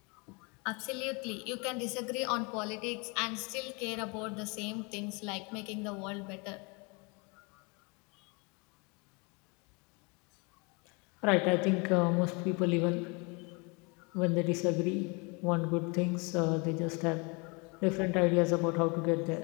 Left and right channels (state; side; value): quieter; right; 30.4 dB